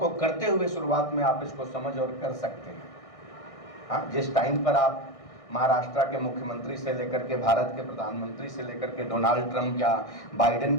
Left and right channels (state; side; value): late; right; 1.6 ms